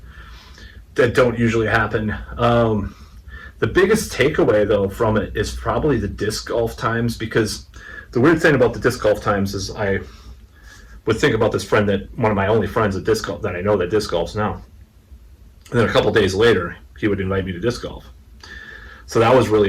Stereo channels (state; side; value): identical; both; correlation 1.00